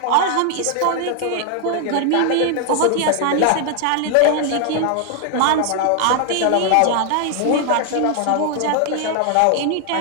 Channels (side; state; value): both; different; correlation 0.00